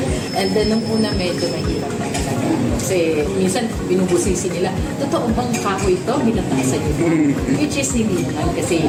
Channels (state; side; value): identical; both; correlation 1.00